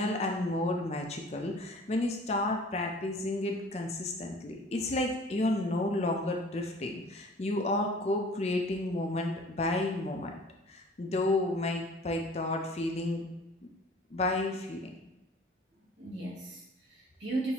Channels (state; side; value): normal; both; correlation 0.48